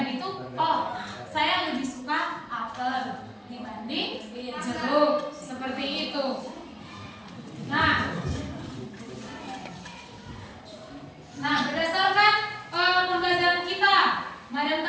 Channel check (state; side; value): identical; both; correlation 1.00